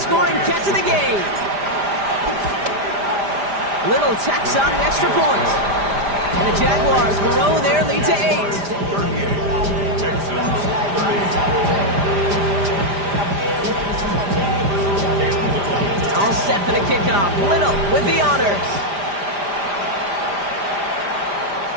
catch of the game. Little tacks on the extra point. And the Jaguars grow their lead to 8. 38. Texans 30. All set for the kickoff. Little with the honors.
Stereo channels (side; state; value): left; late; 5.0 ms